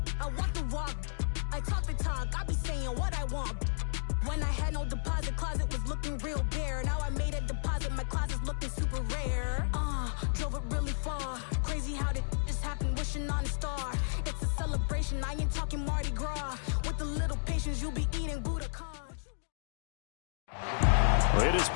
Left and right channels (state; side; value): silent; right; digital silence